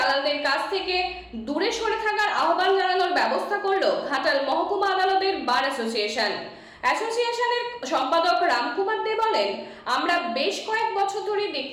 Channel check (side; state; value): both; identical; correlation 1.00